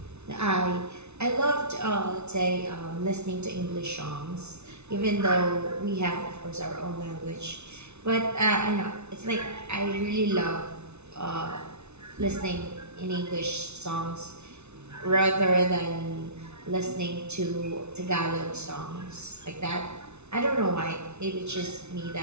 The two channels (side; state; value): left; late; 0.81 ms